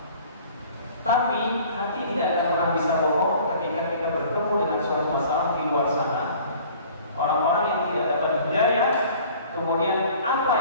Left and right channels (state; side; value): inverted; both; correlation -0.49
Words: Tapi hati tidak akan pernah bisa bohong ketika kita bertemu dengan suatu masalah di luar sana. Orang-orang yang tidak dapat hidayah, kemudian apa